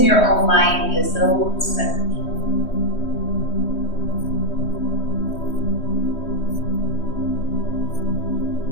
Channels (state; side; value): late; right; 3.1 ms